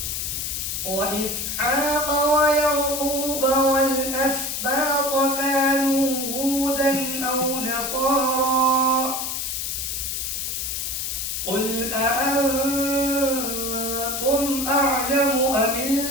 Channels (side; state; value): left; noise; hiss, 3 dB below the sound